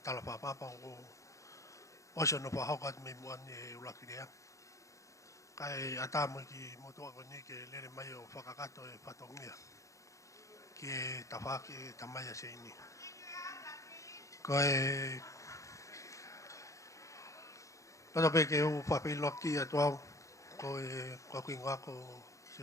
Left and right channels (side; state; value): right; late; 0.15 ms